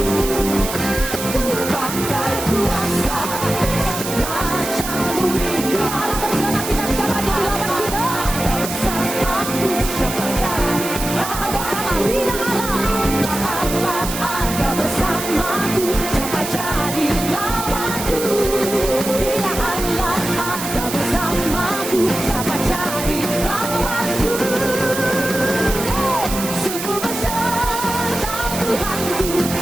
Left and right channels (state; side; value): noise; right; hiss, 6 dB below the sound